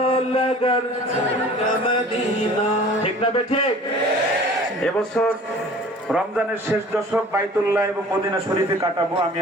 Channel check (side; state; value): both; normal; correlation 0.46